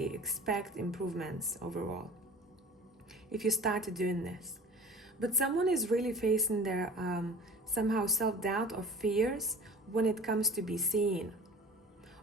expect improvements overall. If you started doing this. But someone is really facing their somehow self-doubt or fears when it comes to be seen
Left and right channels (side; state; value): both; normal; correlation 0.42